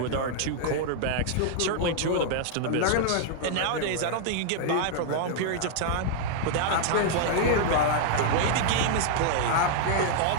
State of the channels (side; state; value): both; different; correlation -0.01